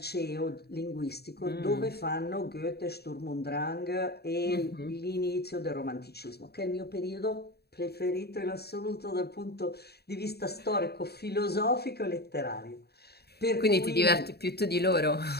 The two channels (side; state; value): right; late; 0.47 ms